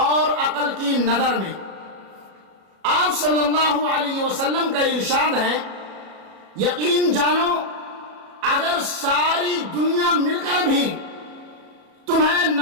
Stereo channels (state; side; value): late; left; 37 ms